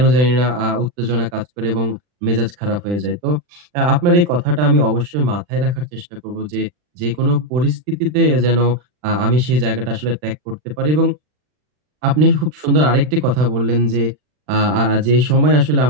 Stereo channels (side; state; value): left; late; 40 ms